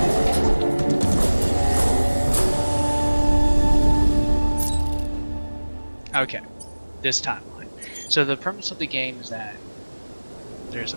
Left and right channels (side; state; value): both; inverted; correlation -1.00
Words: Okay, this timeline. So the premise of the game is that there's a